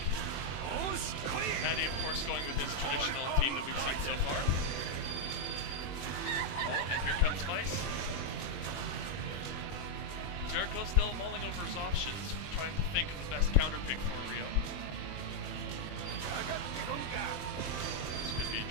Matty, of course, going with his traditional team that we've seen so far. Oh, and here comes Vice. JKO still mulling over his options, trying to think of the best counter pick for Rio. This could be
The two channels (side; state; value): right; late; 21 ms